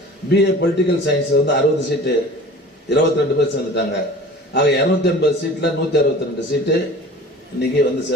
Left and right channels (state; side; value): normal; both; correlation 0.42